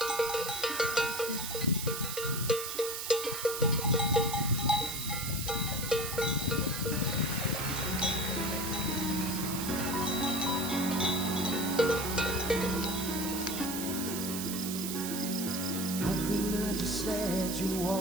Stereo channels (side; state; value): right; noise; hiss, 5 dB below the sound